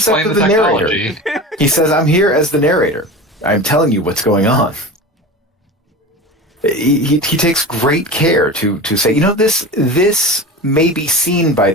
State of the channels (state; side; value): normal; both; correlation 0.31